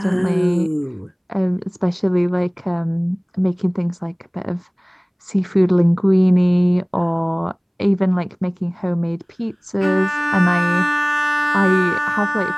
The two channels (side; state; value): both; identical; correlation 1.00